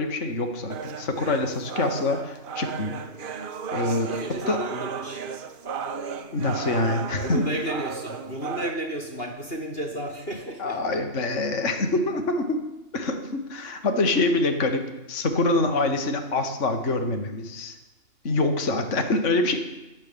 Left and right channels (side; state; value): right; late; 2.8 ms